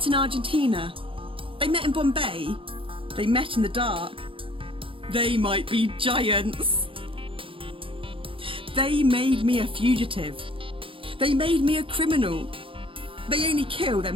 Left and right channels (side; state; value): left; late; 0.26 ms